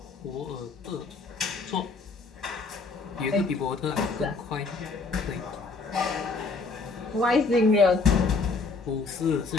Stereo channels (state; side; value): quieter; right; 4.1 dB